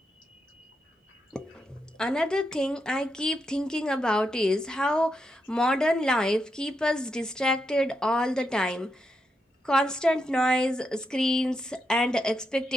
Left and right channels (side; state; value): both; normal; correlation 0.84